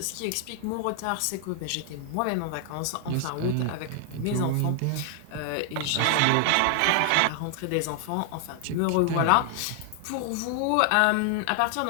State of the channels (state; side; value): different; both; correlation 0.00